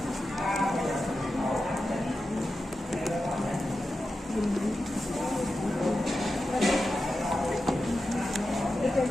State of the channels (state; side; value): normal; both; correlation 0.91